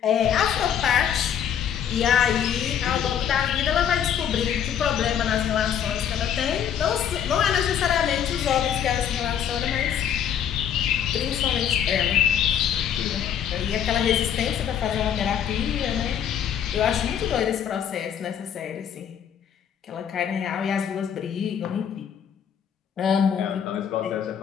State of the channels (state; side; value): quieter; right; 8.9 dB